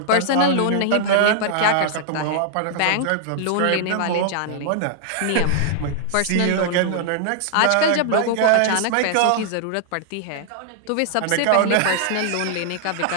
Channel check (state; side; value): different; both; correlation -0.01